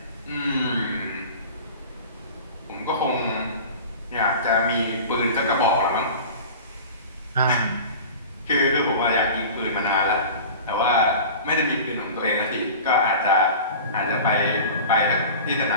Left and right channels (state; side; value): inverted; both; correlation -0.36